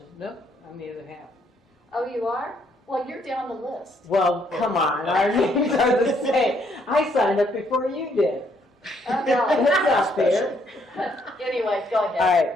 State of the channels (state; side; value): normal; both; correlation 0.70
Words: Nope, I'm the other half. Oh, you are? Well, you're down the list. Well, come on, our names are the same. I signed up before you did. Oh, no. That's not fair. Anyway, go ahead. All